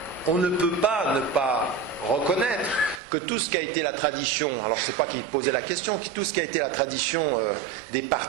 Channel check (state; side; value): drops out; left; at 3.0 s